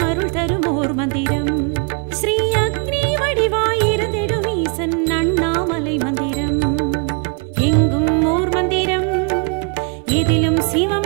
அருள் தரும் ஓர் மந்திரம். ஸ்ரீ அக்னி வடிவாயிருந்திடும் ஈசன் அண்ணாமலை மந்திரம். எங்கும் ஓர் மந்திரம், எதிலும்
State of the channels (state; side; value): quieter; left; 36.9 dB